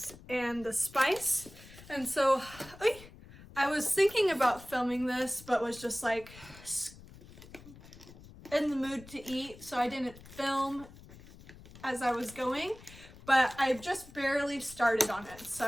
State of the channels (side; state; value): left; noise; rumble, 19 dB below the sound